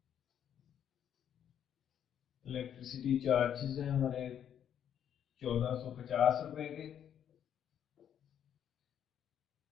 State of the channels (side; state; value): right; quieter; 9.4 dB